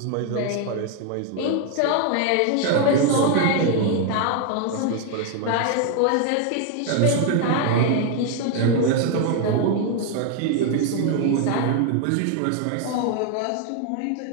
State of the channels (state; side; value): different; both; correlation 0.00